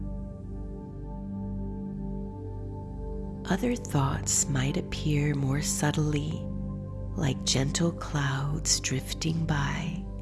Other thoughts might appear more subtly, like gentle clouds drifting by.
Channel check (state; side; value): identical; both; correlation 1.00